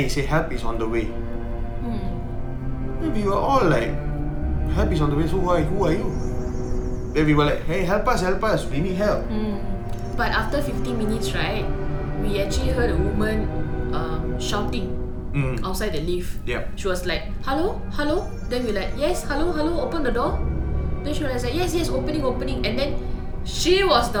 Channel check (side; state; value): both; identical; correlation 1.00